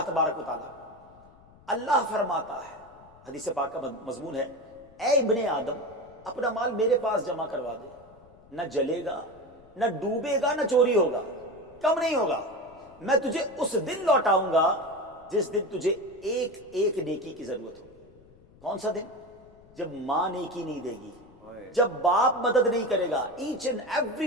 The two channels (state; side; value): noise; left; rumble, 26 dB below the sound